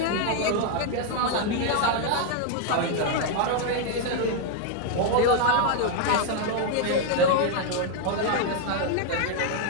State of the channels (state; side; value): different; both; correlation 0.00